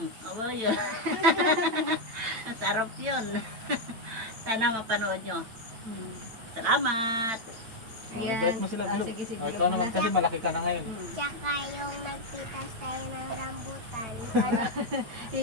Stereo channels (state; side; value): late; left; 8.9 ms